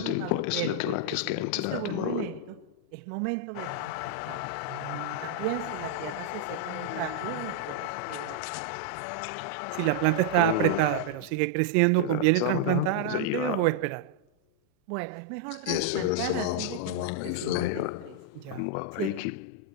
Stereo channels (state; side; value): different; both; correlation -0.01